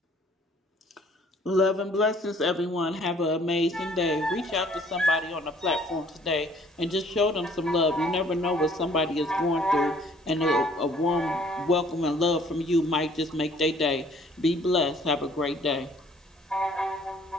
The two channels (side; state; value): both; normal; correlation 0.58